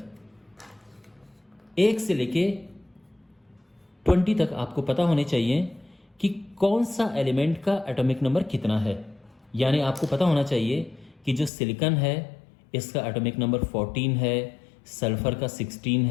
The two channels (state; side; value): drops out; right; at 11.5 s